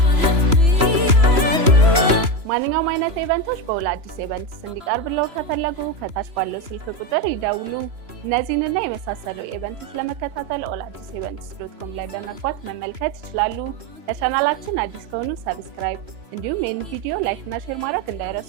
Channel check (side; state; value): left; late; 3.0 ms